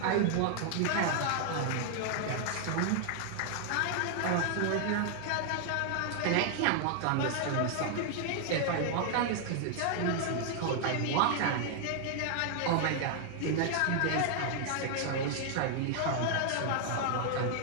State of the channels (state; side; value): different; both; correlation 0.00